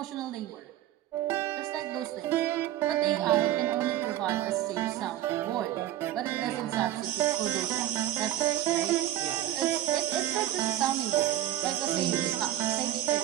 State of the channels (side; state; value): left; quieter; 12.9 dB